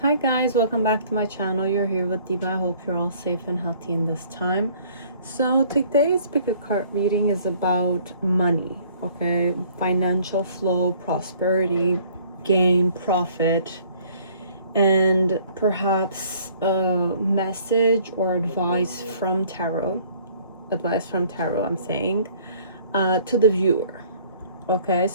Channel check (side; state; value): both; inverted; correlation -0.57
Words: guys, welcome back to my channel. You're here with Diva. I hope you're all safe and healthy in this time. So today's pick a card reading is about money, okay? Financial flow, prosperity, gain, profit, and perhaps a message or advice from tarot. I'm saying, to the viewer. Okay,